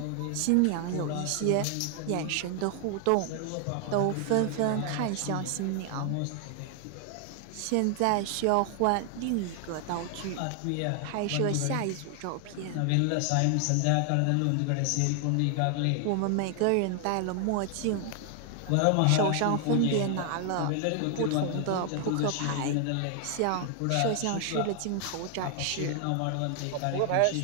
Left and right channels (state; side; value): different; both; correlation 0.00